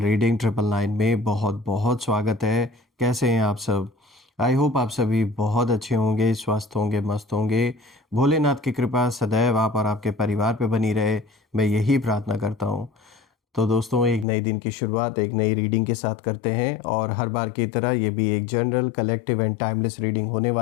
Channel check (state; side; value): drops out; right; at 14.2 s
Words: 999 में बहुत बहुत स्वागत है। कैसे हैं आप सब? आई होप आप सभी बहुत अच्छे होंगे, स्वस्थ होंगे, मस्त होंगे। भोलेनाथ की कृपा सदैव आप और आपके परिवार पे बनी रहे, मैं यही प्रार्थना करता हूँ। तो दोस्तों, एक नए दिन की शुरुआत एक नई रीडिंग के साथ करते हैं और हर बार की तरह ये भी एक general, collective and timeless reading होने